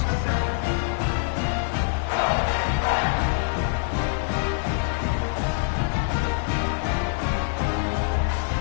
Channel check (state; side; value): silent; right; digital silence